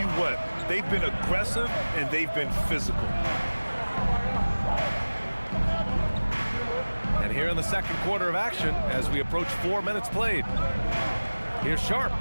what, they've been aggressive and they've been physical. And here in the second quarter of action, as we approach 4 minutes played. Here's Sharp.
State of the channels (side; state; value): both; inverted; correlation -1.00